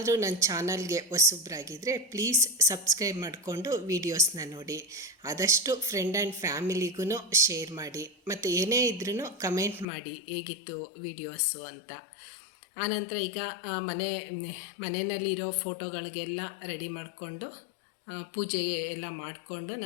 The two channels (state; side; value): drops out; right; at 9.9 s